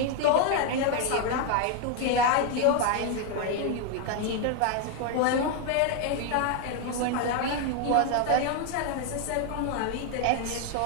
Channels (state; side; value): different; both; correlation 0.01